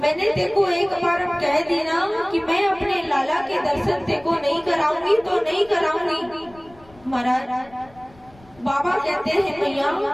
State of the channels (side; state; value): left; noise; rumble, 26 dB below the sound